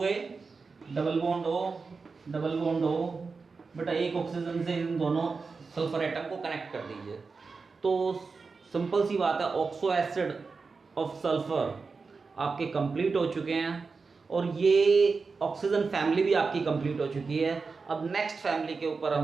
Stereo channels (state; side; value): quieter; left; 4.6 dB